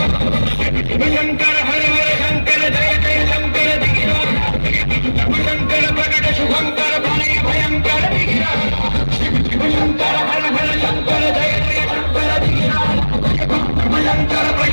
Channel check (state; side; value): inverted; both; correlation -1.00